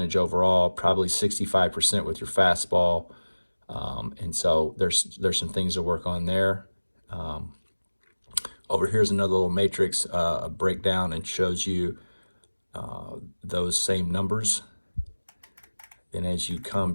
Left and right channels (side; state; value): both; inverted; correlation -1.00